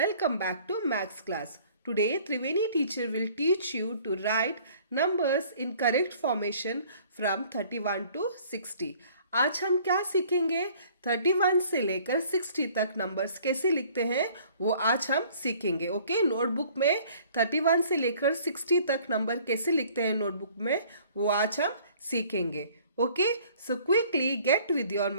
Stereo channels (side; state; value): both; inverted; correlation -0.55